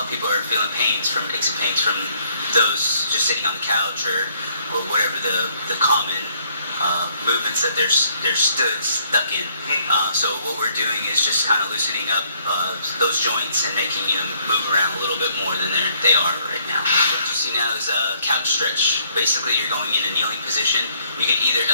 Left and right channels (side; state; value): both; inverted; correlation -0.66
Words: people are feeling aches and pains from those just sitting on the couch or whatever the common movements that they're stuck in. So what we're doing is just kind of loosening up those joints and making them move around a little bit more than they are right now. What you see now is a couch stretch. Basically, you're going in a kneeling position. You can either